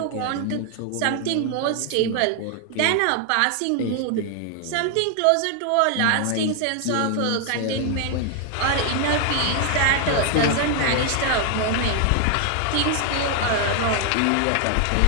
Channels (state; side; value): different; both; correlation 0.00